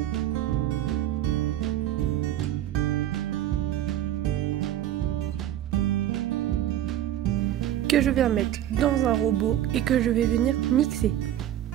Que je viens mettre dans un robot et que je vais venir mixer.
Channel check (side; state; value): left; quieter; 12.1 dB